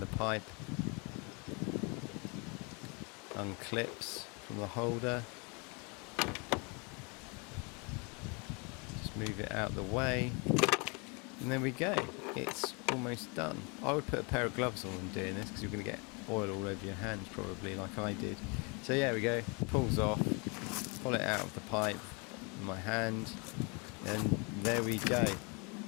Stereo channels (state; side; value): quieter; right; 32.0 dB